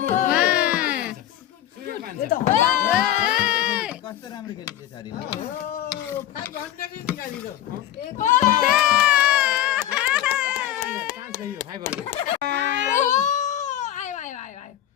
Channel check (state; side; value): quieter; right; 12.6 dB